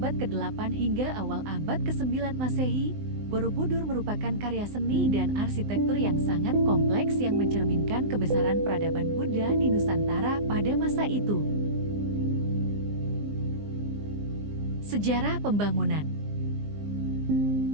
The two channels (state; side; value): late; left; 19 ms